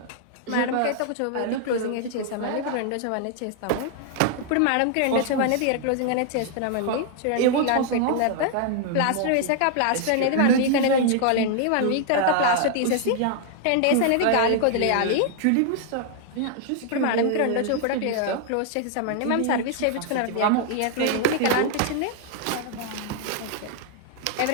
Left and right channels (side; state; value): both; different; correlation 0.00